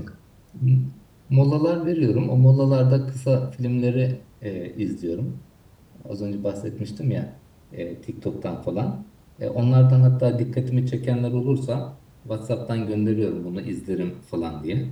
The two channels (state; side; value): identical; both; correlation 1.00